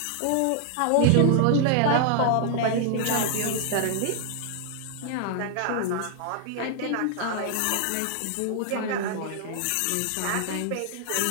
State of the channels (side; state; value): both; different; correlation 0.00